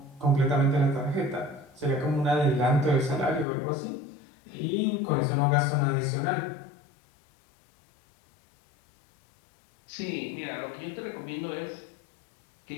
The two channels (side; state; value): right; drops out; at 3.5 s